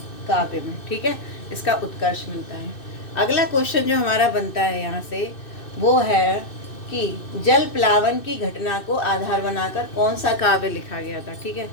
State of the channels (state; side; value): late; right; 2.6 ms